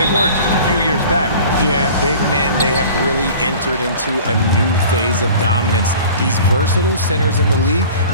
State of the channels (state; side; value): inverted; both; correlation -0.43